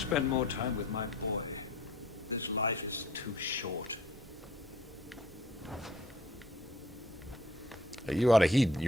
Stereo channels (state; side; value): normal; both; correlation 0.55